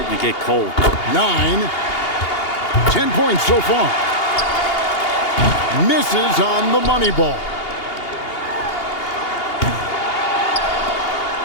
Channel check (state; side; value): late; right; 2.8 ms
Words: to get cold. 9. 10 points so far. Misses on the money ball.